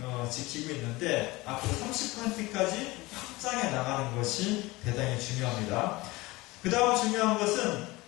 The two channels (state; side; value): quieter; right; 21.3 dB